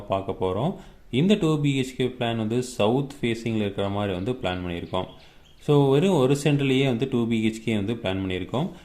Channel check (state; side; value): identical; both; correlation 1.00